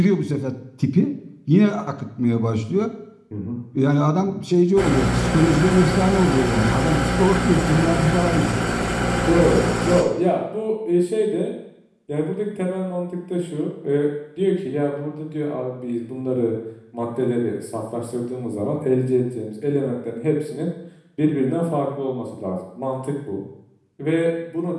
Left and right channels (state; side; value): identical; both; correlation 1.00